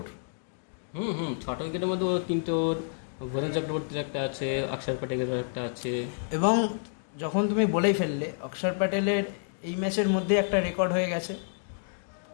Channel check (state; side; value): silent; right; digital silence